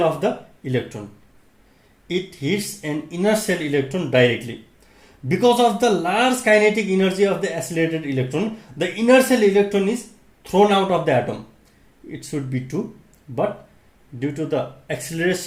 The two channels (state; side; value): identical; both; correlation 1.00